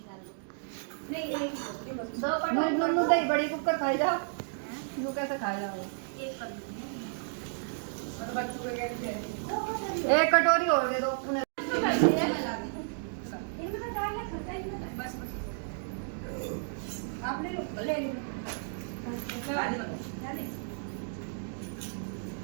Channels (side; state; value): left; silent; digital silence